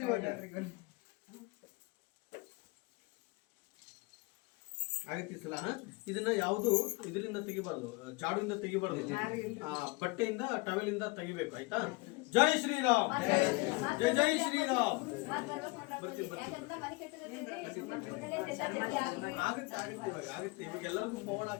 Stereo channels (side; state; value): right; quieter; 25.6 dB